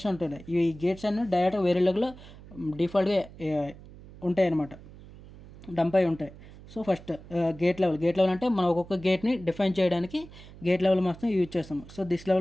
ఉంటున్నాయి. ఈ గేట్స్ అన్నీ డైరెక్ట్గా వెరిలాగ్లో డిఫాల్ట్గా ఉంటాయి అన్నమాట, డంప్ అయి ఉంటాయి. సో ఫస్ట్ గేట్ లెవెల్ అంటే మనం ఒక్కొక్క గేట్ని డిఫైన్ చేయడానికి గేట్ లెవెల్ మాత్రం యూజ్ చేస్తాము. So this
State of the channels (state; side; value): noise; right; hum, 19 dB below the sound